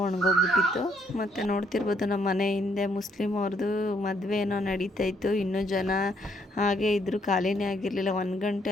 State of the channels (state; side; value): normal; both; correlation 0.70